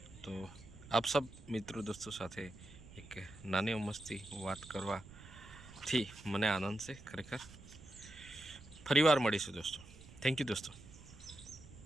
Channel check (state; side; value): noise; right; rumble, 18 dB below the sound